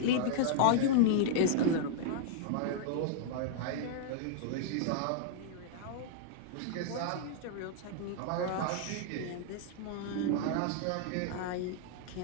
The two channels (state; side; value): different; both; correlation -0.01